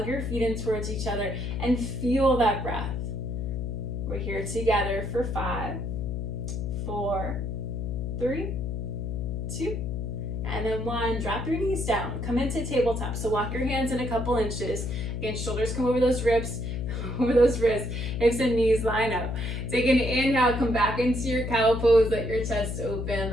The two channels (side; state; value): left; noise; hum, 3 dB below the sound